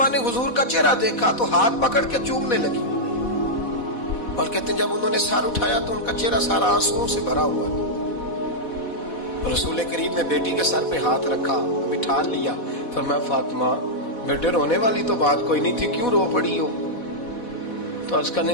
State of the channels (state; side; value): late; right; 4.1 ms